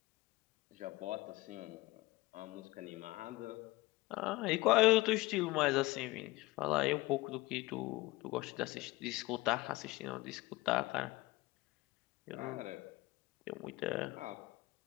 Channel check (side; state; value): right; quieter; 20.5 dB